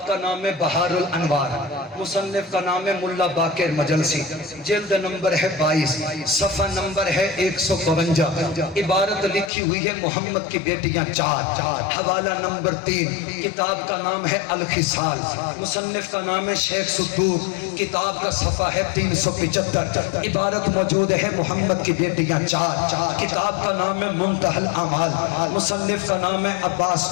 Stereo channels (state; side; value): drops out; right; at 9.5 s